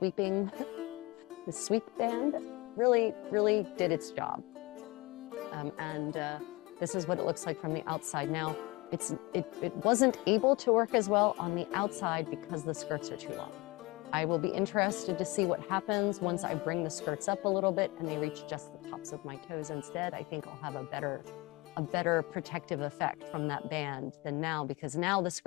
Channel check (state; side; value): quieter; right; 23.3 dB